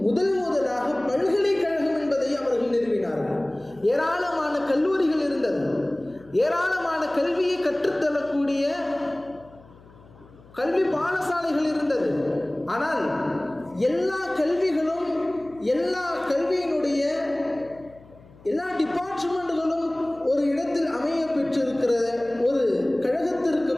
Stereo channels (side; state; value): left; noise; hum, 24 dB below the sound